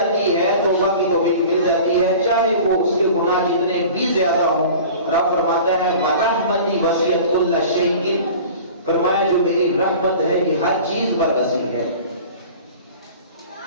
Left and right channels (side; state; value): both; inverted; correlation -0.41